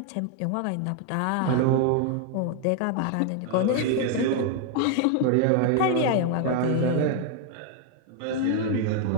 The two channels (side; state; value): both; different; correlation 0.00